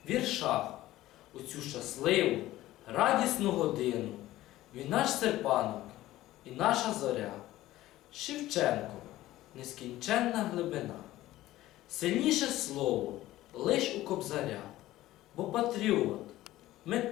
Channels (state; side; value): quieter; right; 15.7 dB